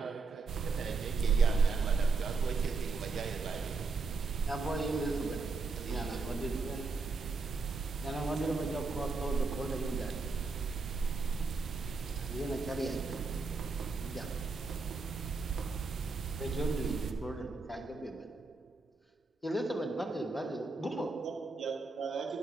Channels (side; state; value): left; quieter; 4.1 dB